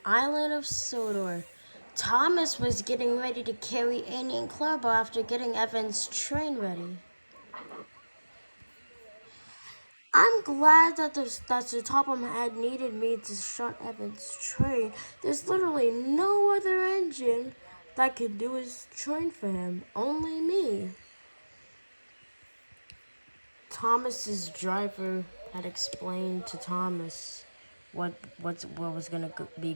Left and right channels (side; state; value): both; inverted; correlation -1.00